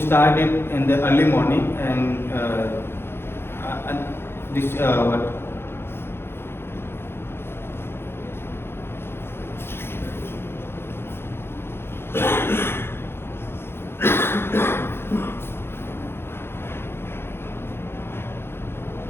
in the early morning and this what?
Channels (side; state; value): right; late; 0.11 ms